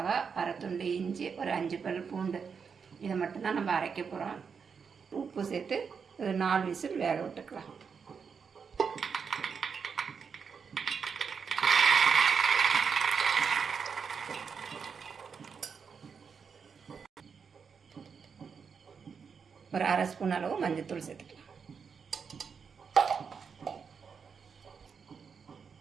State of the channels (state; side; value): quieter; left; 6.1 dB